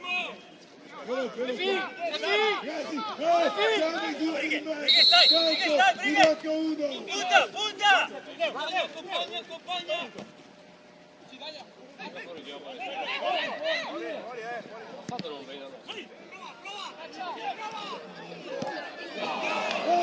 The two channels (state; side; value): identical; both; correlation 1.00